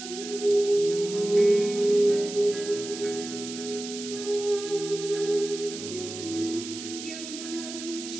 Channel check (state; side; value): noise; right; hiss, 10 dB below the sound